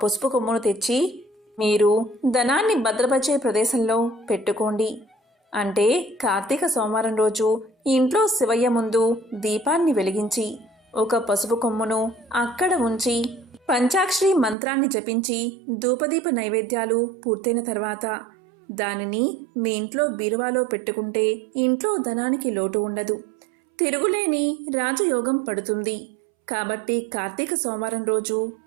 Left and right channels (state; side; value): drops out; left; at 14.6 s